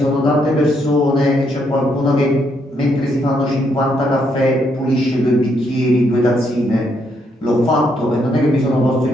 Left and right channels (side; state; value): both; normal; correlation 0.75